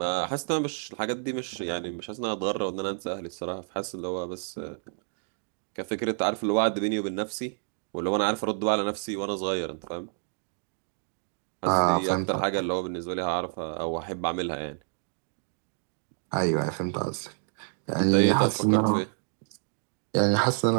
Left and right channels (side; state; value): left; silent; digital silence